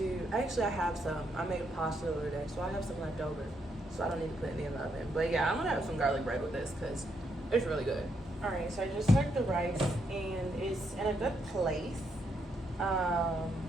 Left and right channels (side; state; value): both; normal; correlation 0.77